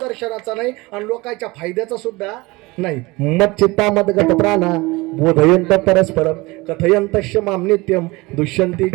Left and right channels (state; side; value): quieter; left; 22.8 dB